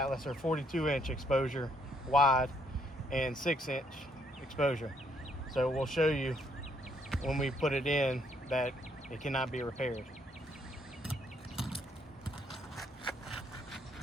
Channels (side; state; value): both; normal; correlation 0.71